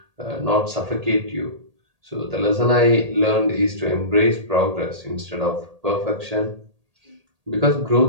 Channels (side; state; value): left; late; 1.8 ms